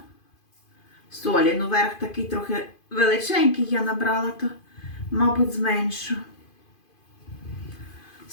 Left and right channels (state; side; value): late; right; 2.5 ms